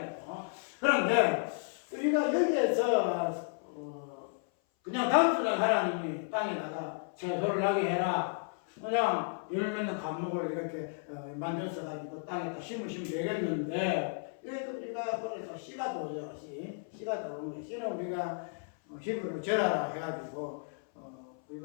거예요. 그런데 우리가 여기에서 그냥 단순한 하나님이 땅에다가 채소를 나게 해라. 그냥 열매는 과목을 이렇게 만들어서 가지고 땅에다 심으시면 되겠는데 이것도 우리가 그래서 씨가 도죠. 씨가 도는 거예요. 씨는 우리가 히브리로 제라라 해가지고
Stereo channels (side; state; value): right; silent; 56 dB below the other